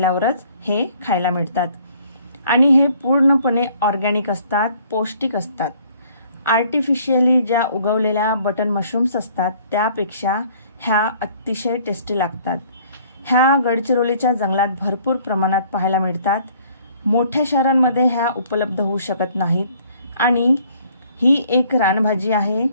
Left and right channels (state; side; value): inverted; both; correlation -0.59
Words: हे खायला मिळतात आणि हे पूर्णपणे ऑर्गॅनिक असतात, पौष्टिक असतात। आर्टिफिशियली ज्या उगवलेल्या बटन मशरूम्स असतात त्यापेक्षा ह्या अतिशय टेस्टी लागतात। ह्या गडचिरोलीच्या जंगलात भरपूर प्रमाणात पाहायला मिळतात। मोठ्या शहरांमध्ये ह्या उपलब्ध होऊ शकत नाहीत आणि ही एक रानभाजी आहे।